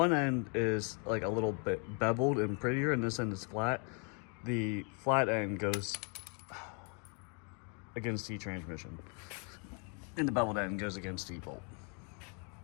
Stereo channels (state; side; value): quieter; right; 36.7 dB